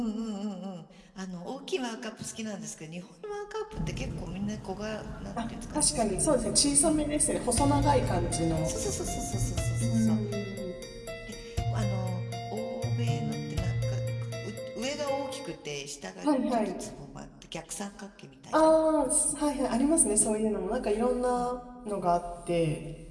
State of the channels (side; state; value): both; identical; correlation 1.00